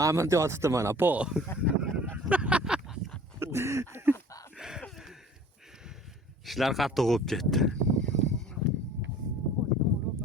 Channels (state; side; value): normal; both; correlation 0.47